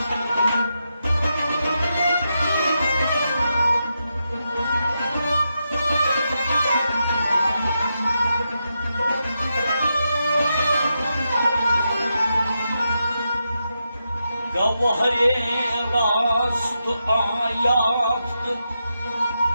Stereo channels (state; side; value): inverted; both; correlation -0.86